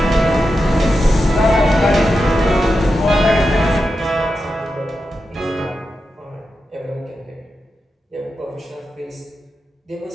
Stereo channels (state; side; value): normal; both; correlation 0.89